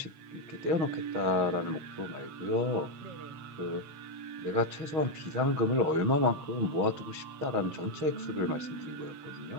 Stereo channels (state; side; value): late; left; 6.4 ms